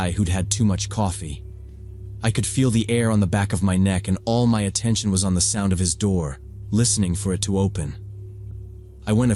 who'd had too much coffee. I could feel the air on the back of my neck, and all my attention was on the sound of his door, listening for it to open. I went a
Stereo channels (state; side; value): identical; both; correlation 1.00